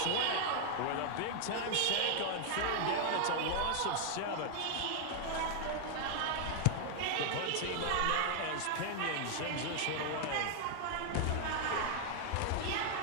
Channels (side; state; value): both; different; correlation 0.00